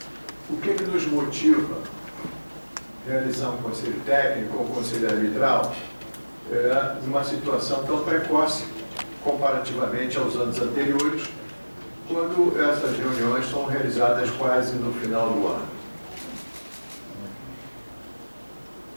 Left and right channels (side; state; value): both; inverted; correlation -1.00